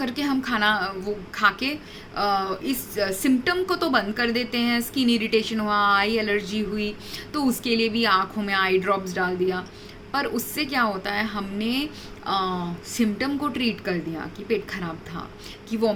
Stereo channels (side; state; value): both; identical; correlation 1.00